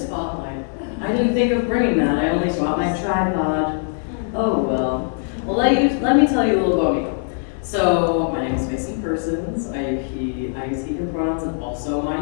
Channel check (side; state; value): right; silent; 64 dB below the other